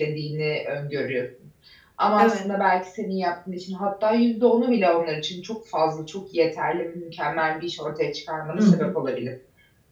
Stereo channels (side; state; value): both; identical; correlation 1.00